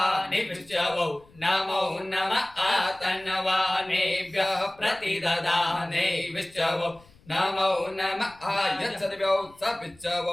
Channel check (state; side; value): noise; left; rumble, 27 dB below the sound